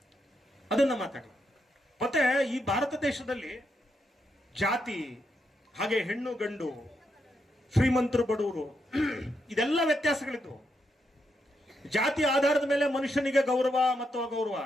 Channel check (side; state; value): both; normal; correlation 0.81